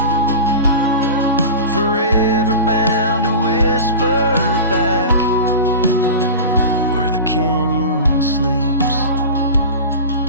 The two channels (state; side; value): inverted; both; correlation -0.31